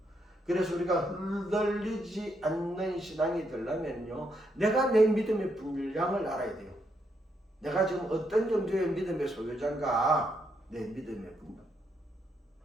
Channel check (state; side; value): normal; both; correlation 0.78